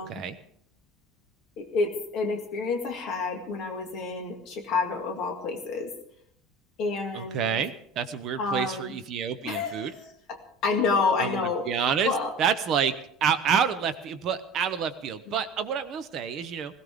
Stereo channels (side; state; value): both; normal; correlation 0.39